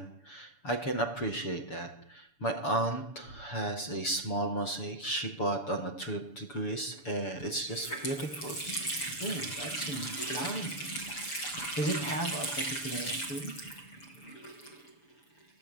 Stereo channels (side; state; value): right; late; 6.9 ms